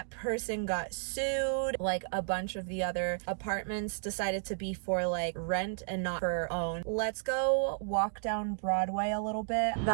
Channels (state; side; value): silent; left; digital silence